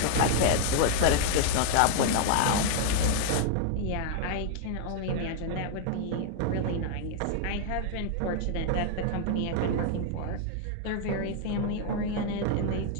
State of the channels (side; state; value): both; different; correlation 0.00